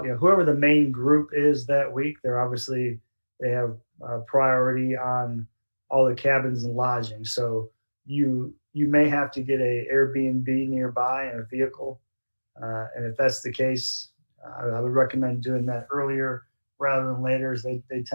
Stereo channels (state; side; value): inverted; both; correlation -1.00